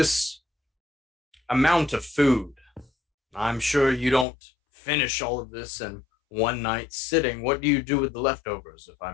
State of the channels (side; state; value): right; drops out; at 4.2 s